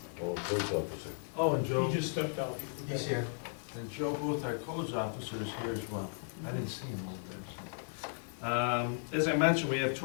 Oh, police officer. Oh, and Joe. He just stepped out. He's here. And Joe Booth, our codes officer, is here as well. I didn't see him over there. So. As I mentioned, we have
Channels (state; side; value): silent; right; digital silence